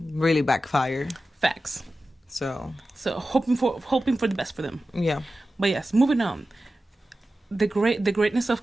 really backfire. Facts. So hoping for the best for them. Yeah. But yes, moving on. The greatness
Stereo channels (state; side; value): normal; both; correlation 0.94